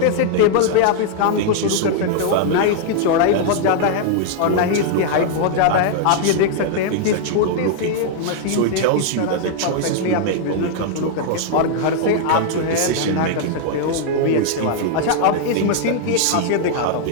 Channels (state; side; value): different; both; correlation 0.00